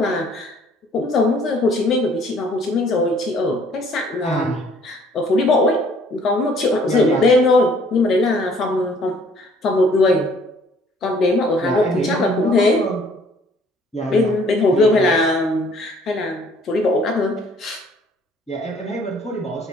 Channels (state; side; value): normal; both; correlation 0.58